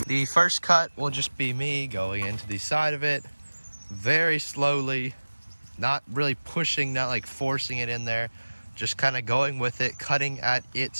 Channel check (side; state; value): both; inverted; correlation -1.00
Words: The first cut will just be me going into the side of it very slowly, not really pushing, not like forcing it in there, just kind of going with it, cutting at